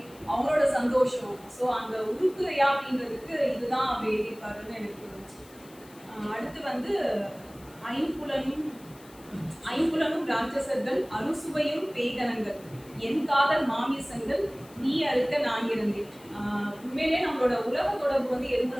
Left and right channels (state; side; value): noise; left; hiss, 24 dB below the sound